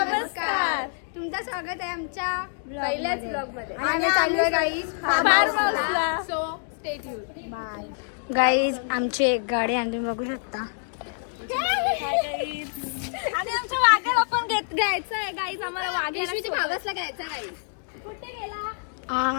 तुमचं स्वागत आहे आमच्या पहिल्याच ब्लॉग मध्ये. आम्ही चाललोय गाईज फार्म हाऊसला. So stay tune. Bye guys. आमची एक गाडी आणि तुम्ही बघू शकता. आणि आमच्या वाघ्याला पण घ्यायचं आहे गाईज. आम्हाला वाघ्याला भागसला घ्यायचा गाईज. कुठे गेला?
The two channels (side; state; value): right; silent; digital silence